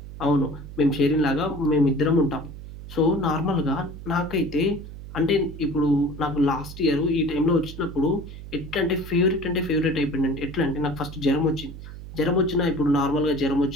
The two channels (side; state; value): right; noise; hum, 13 dB below the sound